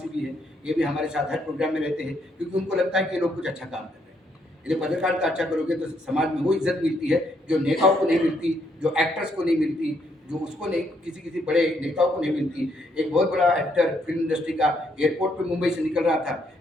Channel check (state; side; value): normal; both; correlation 0.73